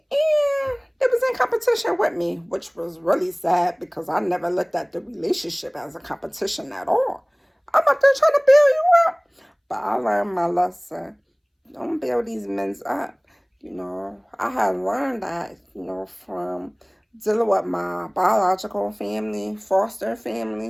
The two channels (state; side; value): identical; both; correlation 1.00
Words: and it was in competition with me, which was really sad because I never looked at the relationship as a competition at all. I'm out there trying to build you up. But I learned my lesson. Don't build these men up. I had learned that, from dealing with my biological family, foster